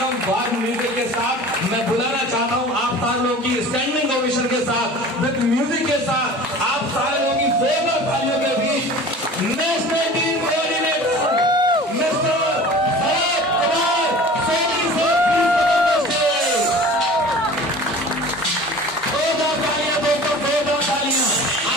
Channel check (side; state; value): both; normal; correlation 0.41